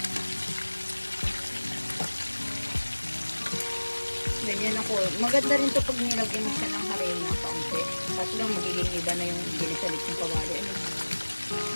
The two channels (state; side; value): inverted; both; correlation -1.00